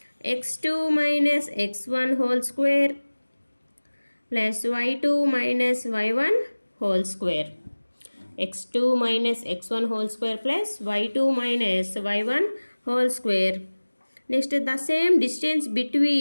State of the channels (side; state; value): both; inverted; correlation -1.00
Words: x2 minus x1 whole square plus y2 minus y1 whole square. x2 minus x1 whole square plus y2 minus y1 whole square. Next, the same distance